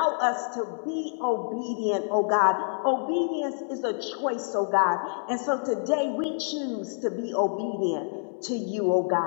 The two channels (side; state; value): right; silent; digital silence